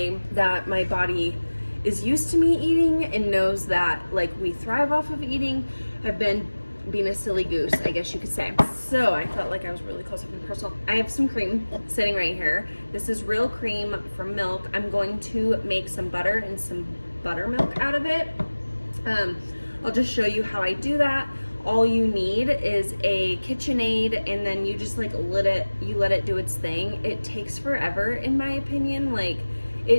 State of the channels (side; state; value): both; inverted; correlation -1.00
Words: that my body is used to me eating and knows that like we thrive off of eating. I've been being a silly goose, I guess you could say. So I felt like I was really close up and personal. I have some cream sitting right here. This is real cream from milk. I'm going to make some butter and some buttermilk out of it. I'll just show you how I do that. All you need is a KitchenAid, and then you just like let it do its thing. It takes forever, in my opinion. Like,